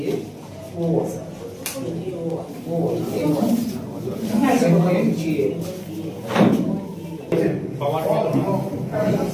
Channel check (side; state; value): both; identical; correlation 1.00